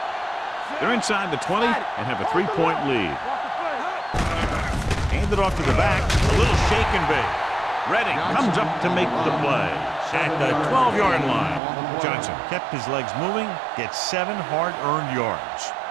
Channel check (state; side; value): drops out; left; at 11.6 s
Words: They're inside the 20 and have a 3-point lead. Handed off to the back, a little shake and bake. Redding comes up to make the play at the 12-yard line. Johnson kept his legs moving, gets 7 hard-earned yards.